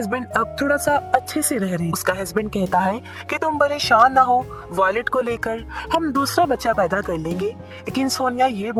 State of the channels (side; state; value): both; identical; correlation 1.00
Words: अब थोड़ा सा अच्छे से रह रहे हैं। उसका हस्बैंड कहता है कि तुम परेशान ना हो, वॉलेट को लेकर हम दूसरा बच्चा पैदा कर लेंगे। लेकिन सोनिया ये